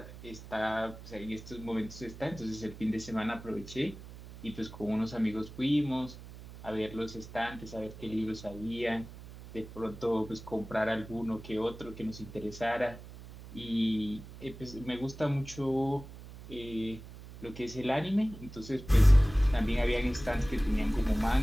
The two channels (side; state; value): right; noise; hum, 15 dB below the sound